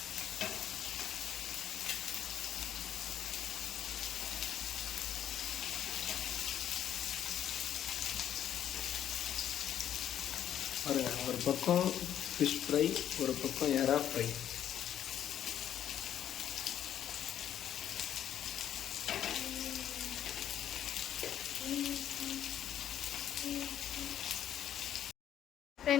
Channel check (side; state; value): right; quieter; 10.4 dB